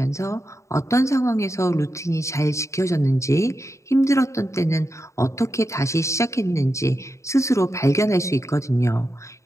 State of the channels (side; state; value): right; late; 0.14 ms